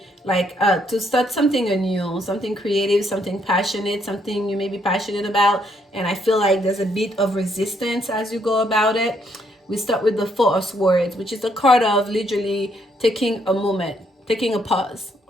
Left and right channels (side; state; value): both; normal; correlation 0.72